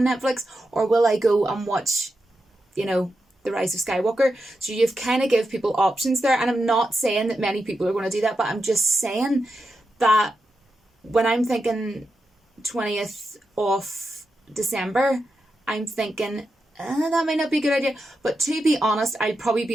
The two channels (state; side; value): normal; both; correlation 0.88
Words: Netflix, or will I go and watch, the Rise of Skywalker? So you've kind of give people options there, and I'm not saying that many people are going to do that, but I'm just saying that when I'm thinking 20th of December, I'm thinking that might not be a good idea. But to be honest, I'd probably